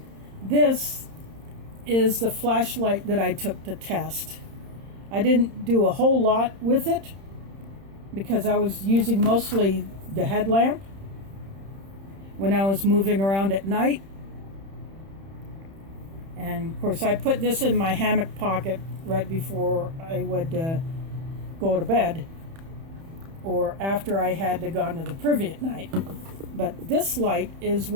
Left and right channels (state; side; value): late; left; 31 ms